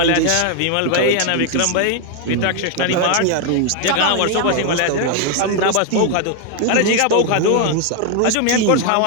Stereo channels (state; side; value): different; both; correlation 0.01